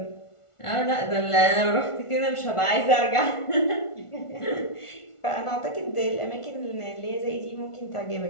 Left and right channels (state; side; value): late; right; 1.4 ms